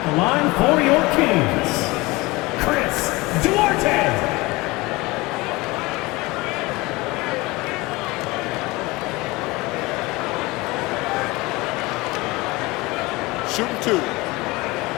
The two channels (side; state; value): right; quieter; 22.4 dB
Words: the line for your Kings, Chris Duarte. Shooting two.